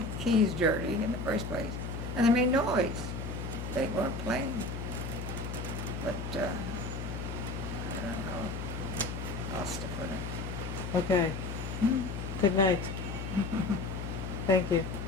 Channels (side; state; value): left; noise; hum, 5 dB below the sound